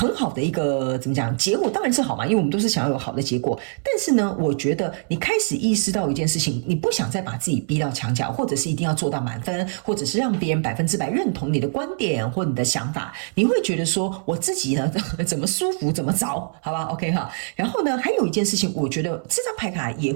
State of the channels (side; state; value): left; silent; 63 dB below the other